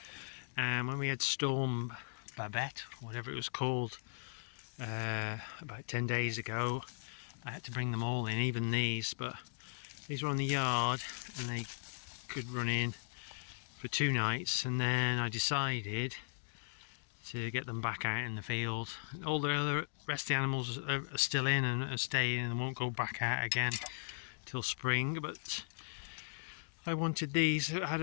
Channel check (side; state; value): right; silent; digital silence